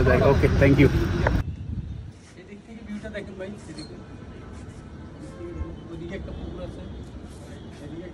জায়গা। ওকে, থ্যাংক ইউ। এদিক থেকে ভিউটা দেখেন ভাই, এদিকে ওদিকে একটা পুকুর আছে, এদিকে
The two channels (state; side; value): identical; both; correlation 1.00